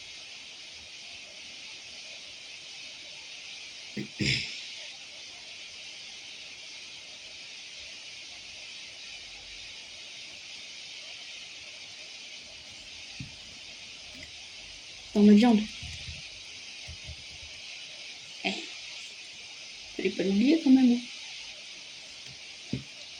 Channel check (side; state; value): both; identical; correlation 1.00